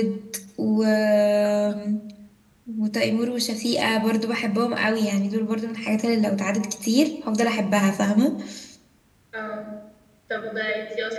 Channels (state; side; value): identical; both; correlation 1.00